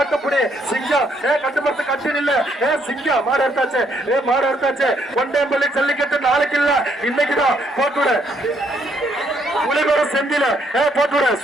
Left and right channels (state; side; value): normal; both; correlation 0.71